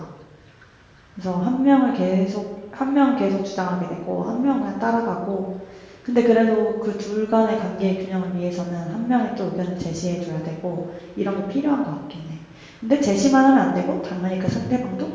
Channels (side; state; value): both; identical; correlation 1.00